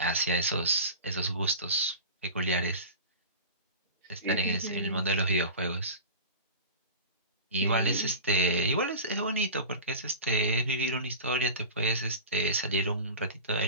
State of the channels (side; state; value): both; inverted; correlation -0.33